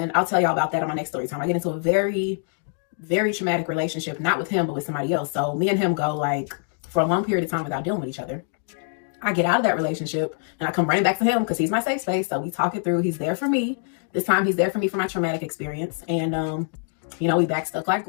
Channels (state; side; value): silent; right; 60 dB below the other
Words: I'll tell y'all about that on my next story time. I get into a very, very traumatic relationship, not with him, but with somebody else. So me and him go like for a long period of time without dealing with each other. I get out of that relationship and I come running back to him because he's my safe space. So we talk it through. He's there for me. This time he's there for me for my traumatic experience. And, you know, we back stuck like